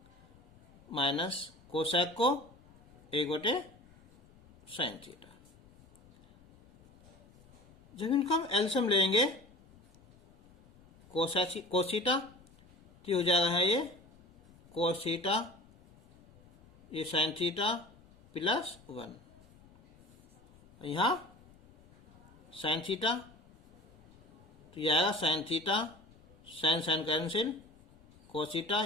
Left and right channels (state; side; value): noise; left; rumble, 25 dB below the sound